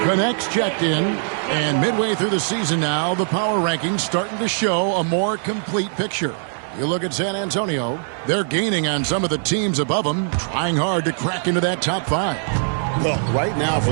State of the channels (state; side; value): silent; left; digital silence